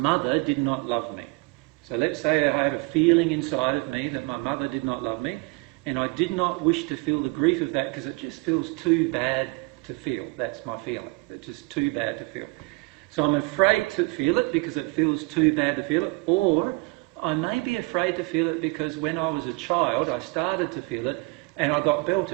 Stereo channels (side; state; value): left; quieter; 26.5 dB